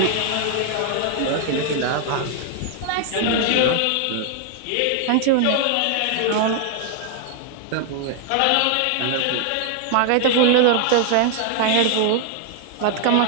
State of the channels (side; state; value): both; different; correlation 0.00